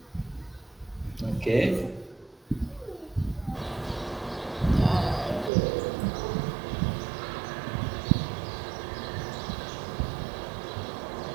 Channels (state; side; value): drops out; left; at 5.5 s